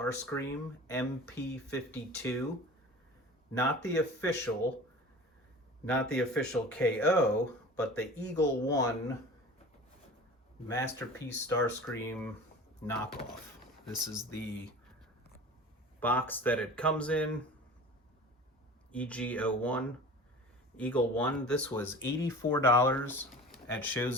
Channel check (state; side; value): normal; both; correlation 0.39